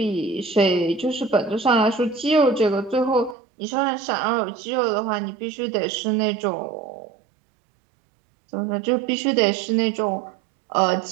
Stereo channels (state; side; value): drops out; left; at 3.4 s